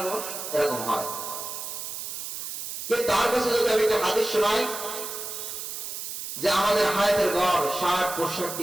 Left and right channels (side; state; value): right; noise; hiss, 7 dB below the sound